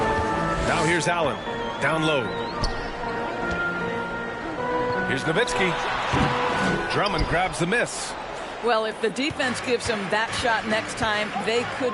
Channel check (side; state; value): both; identical; correlation 1.00